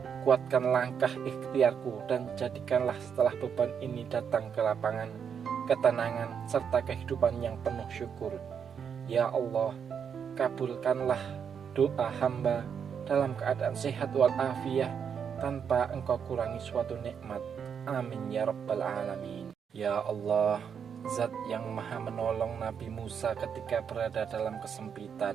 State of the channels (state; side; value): quieter; left; 7.3 dB